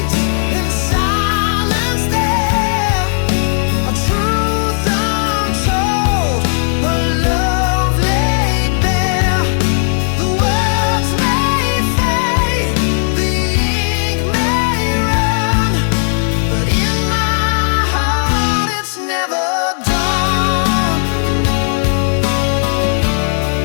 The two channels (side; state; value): right; silent; digital silence